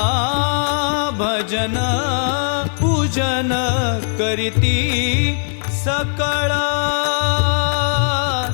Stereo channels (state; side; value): silent; right; digital silence